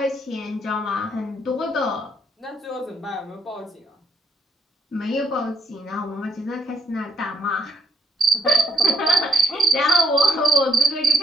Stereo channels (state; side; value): normal; both; correlation 0.73